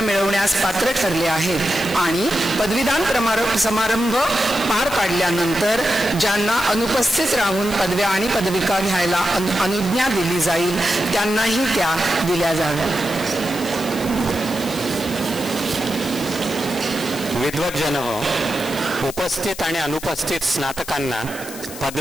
मिळवण्यास पात्र ठरले आहेत आणि पदवीदान समारंभ पार पाडल्यानंतर ज्यांना अनुपस्थित राहून पदव्या आणि पदविका घ्यायला अनुज्ञा दिली जाईल त्यांनाही त्या दिल्या जाव्यात. विद्वज्जन हो, उपस्थित आणि अनुपस्थित स्नातकांना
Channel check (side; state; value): left; noise; hiss, 13 dB below the sound